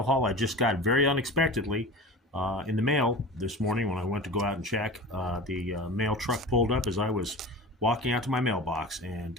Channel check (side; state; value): both; normal; correlation 0.34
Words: haul I just got very unexpectedly in the mail this morning when I went to go out and check. The mail truck pulled up as I was walking out to my mailbox,